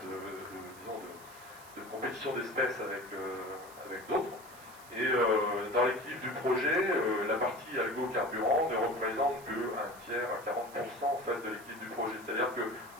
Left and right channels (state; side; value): noise; right; hiss, 20 dB below the sound